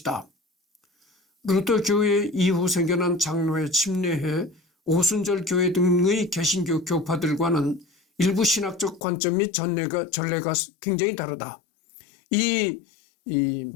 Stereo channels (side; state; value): right; drops out; at 9.0 s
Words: 루터 교회 이후 생겨난 장로회, 침례회, 오순절 교회 등의 개신교 교파들과는 일부 신학적 관점 및 전례가 굉장히 다르다. 이